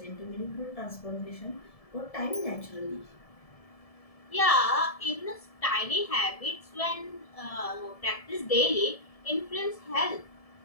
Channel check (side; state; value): right; late; 1.7 ms